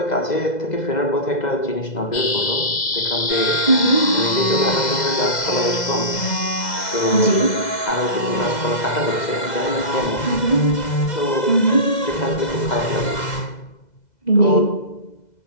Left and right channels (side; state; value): right; late; 2.0 ms